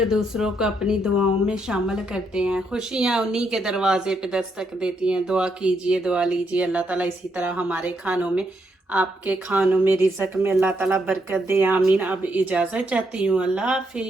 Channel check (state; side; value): normal; both; correlation 0.77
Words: दूसरों को अपनी दुआओं में शामिल करते हैं, खुशियाँ उन्हीं के दरवाजे पे दस्तक देती हैं। दुआ कीजिए, दुआ लीजिए, अल्लाह ताला इसी तरह हमारे खानों में, आपके खानों में, रिज़्क़ में अल्लाह ताला बरकत दे, आमीन। अब इजाज़त चाहती हूँ, अल्लाह